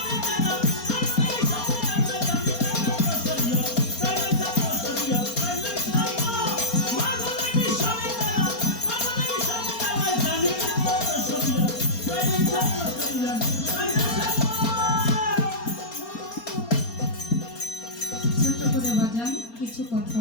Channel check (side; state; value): right; late; 4.3 ms